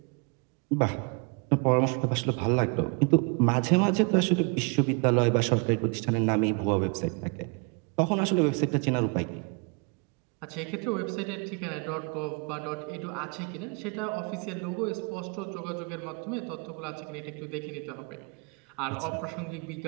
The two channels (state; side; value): quieter; left; 33.3 dB